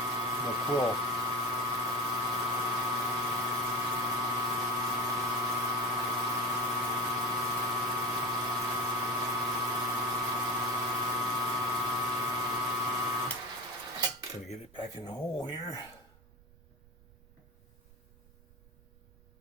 the quill. Gonna get it back in the hole here.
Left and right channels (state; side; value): noise; right; rumble, 25 dB below the sound